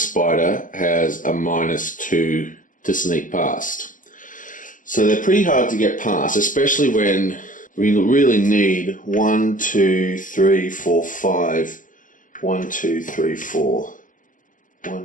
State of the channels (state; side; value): late; right; 0.38 ms